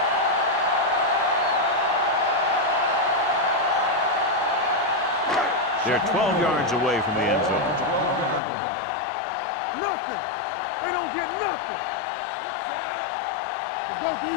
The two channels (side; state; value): right; drops out; at 8.4 s